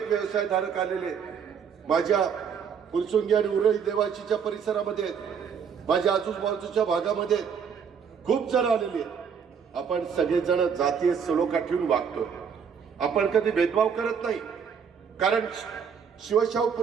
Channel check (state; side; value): quieter; left; 6.9 dB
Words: व्यवसायधारक आलेले माझ्या फुरसुंगी आणि उरळी देवाचीच्या परिसरामध्ये, माझ्या आजूबाजूच्या भागामध्ये खूप जण आलेले. आपण सगळेजण जातीय सलोखा ठेवून वागतो. आपण कधी भेदभाव करत नाही, कारण शिवशाहू